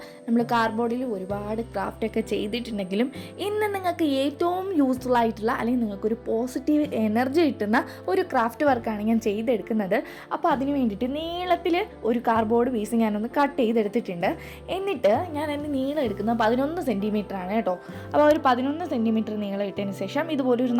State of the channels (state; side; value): identical; both; correlation 1.00